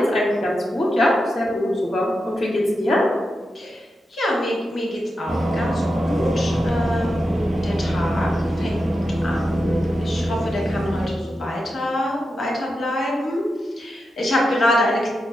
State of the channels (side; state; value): both; normal; correlation 0.89